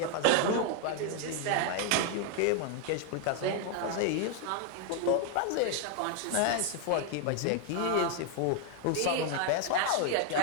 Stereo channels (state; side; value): different; both; correlation 0.00